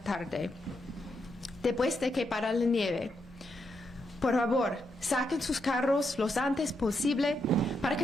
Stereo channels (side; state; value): both; normal; correlation 0.81